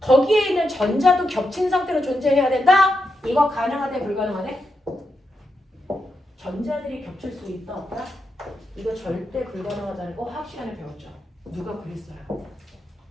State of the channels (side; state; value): both; normal; correlation 0.85